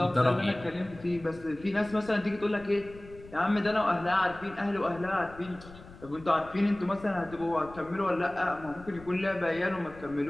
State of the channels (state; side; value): noise; left; rumble, 19 dB below the sound